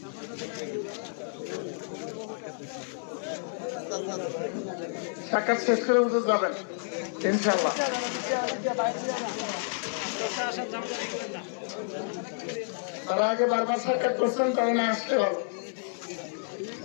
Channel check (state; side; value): silent; right; digital silence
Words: সাক্ষাৎ শেষ করে বুঝে যাবেন ইনশাআল্লাহ। তারা আগে বারবার সাক্ষাৎ করছেন তারা না আসতে ভালো।